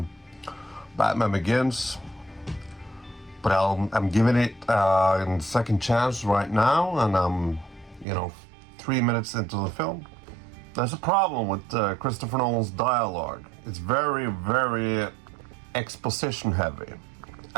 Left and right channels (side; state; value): left; drops out; at 8.1 s